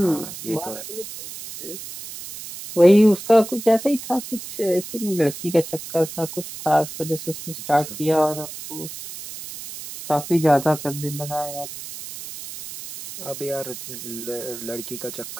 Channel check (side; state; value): right; noise; hiss, 11 dB below the sound